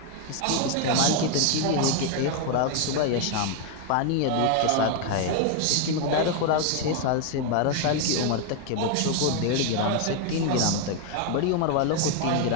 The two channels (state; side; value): different; both; correlation 0.01